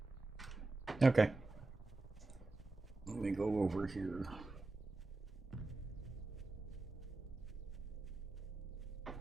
Okay. Let me go over here.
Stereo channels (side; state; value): left; quieter; 3.1 dB